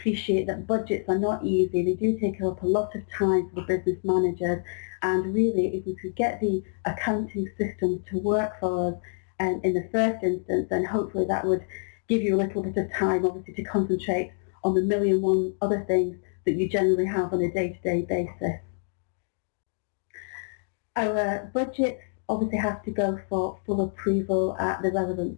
that budgets are not easy. They do take up a lot of time for the business managers, and really if we could get the accounting system to work for us in the first instance, then hopefully that would give you a little bit of time obviously to concentrate on the million one other things that you generally have on a day-to-day basis. Our budgets obviously have to go for full approval at the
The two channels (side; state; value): right; silent; digital silence